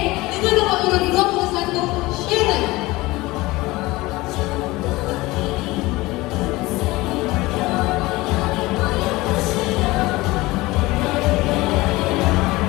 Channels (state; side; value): quieter; right; 20.4 dB